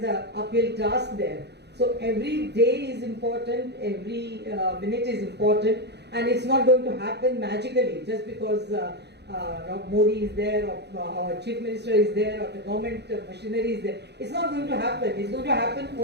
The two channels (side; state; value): left; late; 0.49 ms